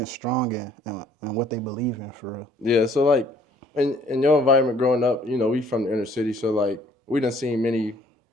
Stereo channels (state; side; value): normal; both; correlation 0.60